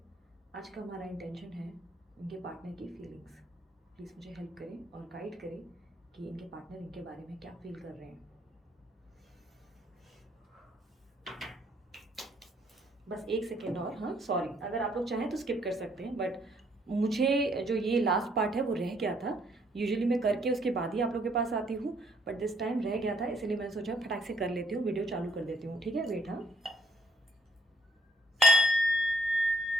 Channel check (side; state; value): both; normal; correlation 0.67